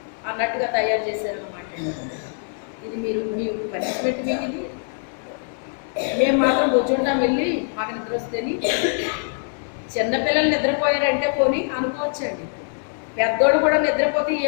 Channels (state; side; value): silent; right; 63 dB below the other